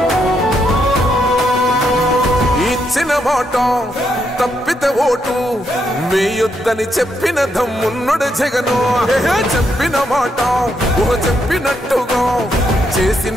మాట తప్పితే ఓటు వేయొద్దని చెప్పిన దమ్మున్నడు జగను. చెప్పిన మాట చెప్పినట్టుగా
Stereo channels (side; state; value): both; normal; correlation 0.78